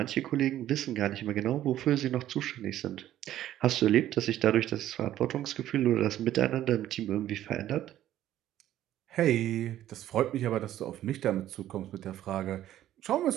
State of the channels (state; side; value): quieter; left; 12.7 dB